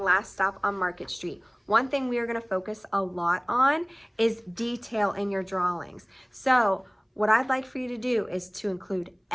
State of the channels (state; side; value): identical; both; correlation 1.00